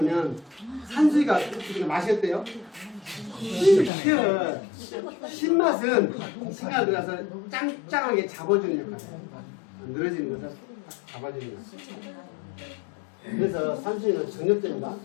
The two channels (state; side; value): drops out; right; at 3.9 s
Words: 산수유가 우리가 마셨대요. 신맛은 시간 들어서 짱짱하게 잡아주는 역할이에요. 늘어지는 것을 잡아주는 역할. 그래서 산수유는 정력제입니다.